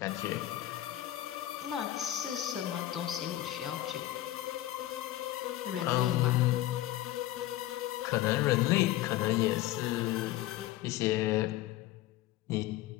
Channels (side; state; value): right; quieter; 14.8 dB